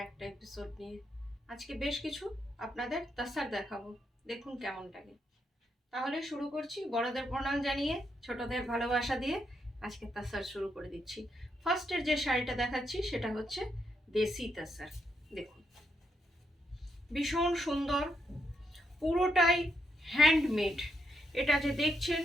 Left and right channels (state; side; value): normal; both; correlation 0.79